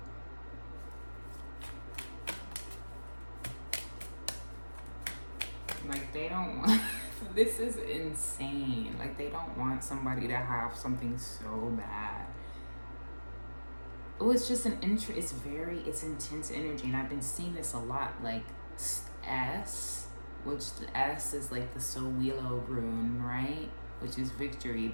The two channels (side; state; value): both; inverted; correlation -1.00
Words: Like they don't want this is insane. Like they don't want somebody to have something so bad. Oh, it's just it's intense energy, and I've been seeing this a lot. Like S, which the S is like the Sowilo rune, right? Which is victory,